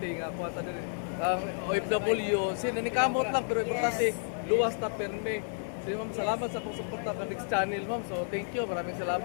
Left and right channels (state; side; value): silent; right; digital silence